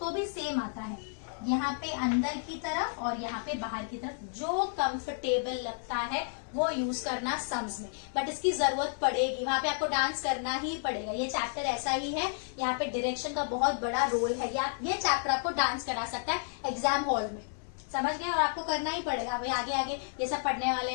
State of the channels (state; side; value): silent; right; digital silence